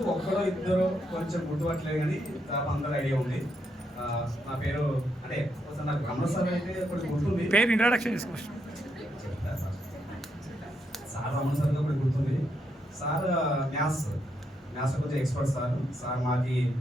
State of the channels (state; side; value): normal; both; correlation 0.79